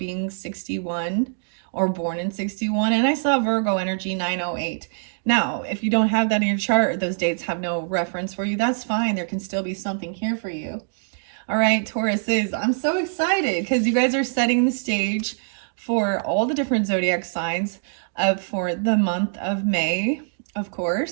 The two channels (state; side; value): silent; left; digital silence